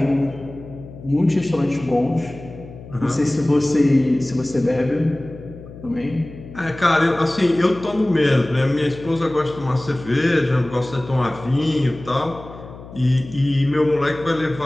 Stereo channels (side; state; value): left; noise; hum, 16 dB below the sound